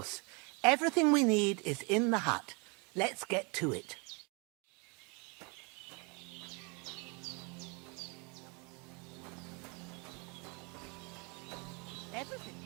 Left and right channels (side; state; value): left; quieter; 31.7 dB